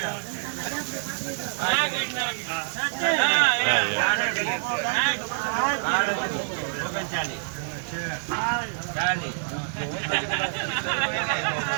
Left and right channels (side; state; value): left; silent; 57 dB below the other